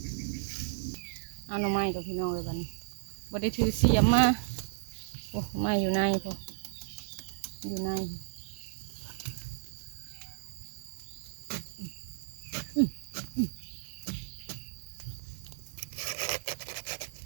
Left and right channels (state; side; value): silent; left; 55 dB below the other